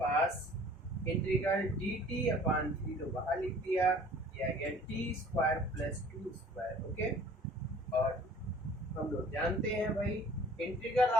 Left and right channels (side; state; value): both; normal; correlation 0.51